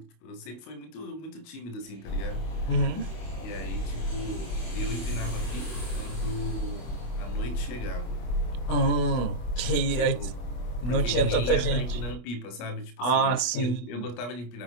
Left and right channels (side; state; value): right; late; 24 ms